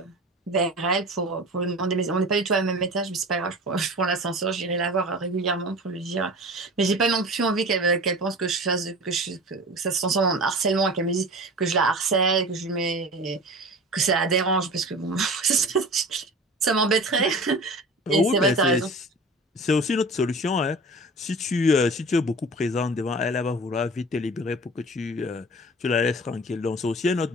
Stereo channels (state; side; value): normal; both; correlation 0.37